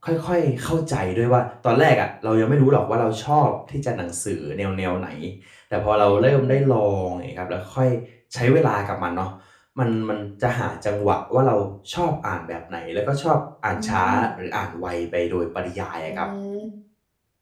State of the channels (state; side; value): identical; both; correlation 1.00